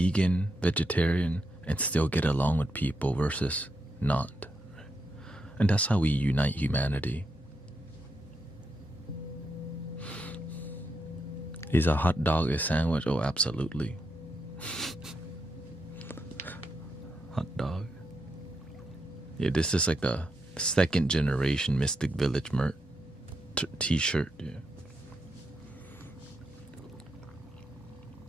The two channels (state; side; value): normal; both; correlation 0.82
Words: vegetarian, and still get along with people versus not. And that's how we unite humanity. Is a hot dog a sandwich? Oh, absolutely. Hot dog. Yeah, this is like the second generation Mystic Village merch t-shirt. Yeah.